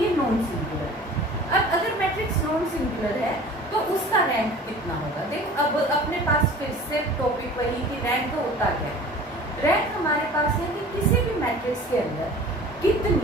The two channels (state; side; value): normal; both; correlation 0.43